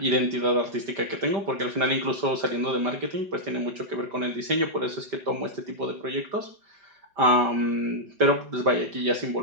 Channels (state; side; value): late; left; 5.1 ms